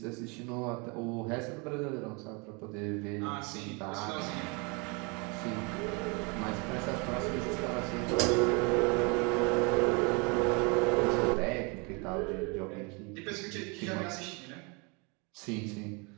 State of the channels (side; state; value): left; quieter; 31.1 dB